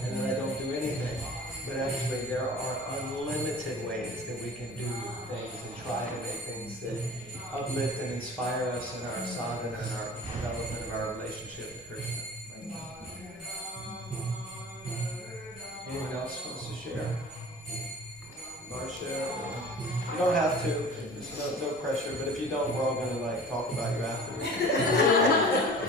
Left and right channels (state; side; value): normal; both; correlation 0.42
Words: then I don't do anything. But actually there are unlimited ways that we can do things and try to make things that uplift and inspire us in our sadhana and our development of our relationship with Krishna. Anyone else wants to share? Marcia? You don't have to. There's no pressure. But if you don't, we're all going to like talk about you afterwards.